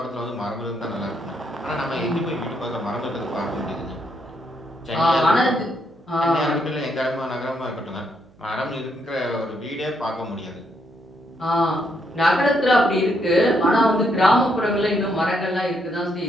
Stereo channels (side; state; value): right; noise; hum, 30 dB below the sound